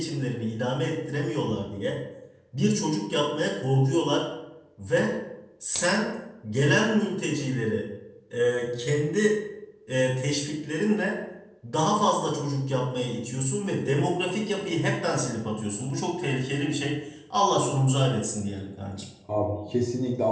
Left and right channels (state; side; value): identical; both; correlation 1.00